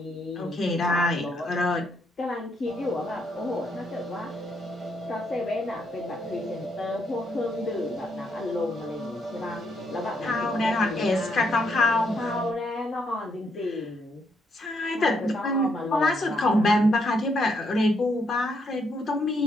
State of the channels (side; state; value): both; normal; correlation 0.75